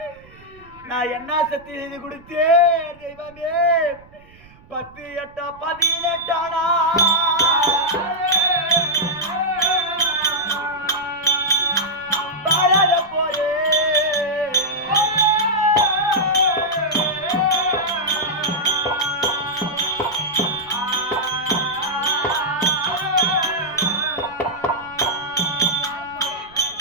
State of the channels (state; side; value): noise; right; rumble, 25 dB below the sound